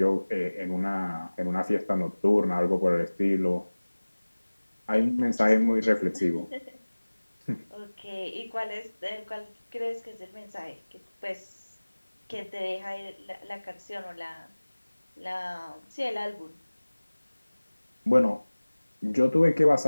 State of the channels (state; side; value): inverted; both; correlation -1.00